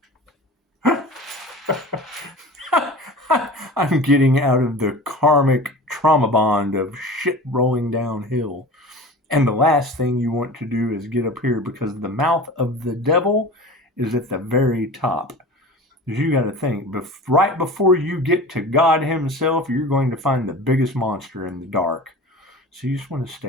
I'm getting out of the karmic trauma bond of shit rolling downhill. And the last thing you want to do is get up here, because the mouth of the devil is at the very top. Because you got to think, right before you get to God himself, you're going to find the biggest monster in the dark. So you just want to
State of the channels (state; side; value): normal; both; correlation 0.36